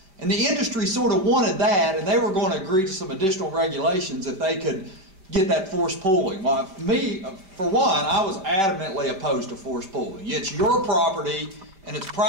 And the industry sort of wanted that, and they were going to agree to some additional regulations if they could get that forced pooling. Well, me, for one, I was adamantly opposed to forced pooling. It's your property, and it's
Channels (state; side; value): late; left; 5.1 ms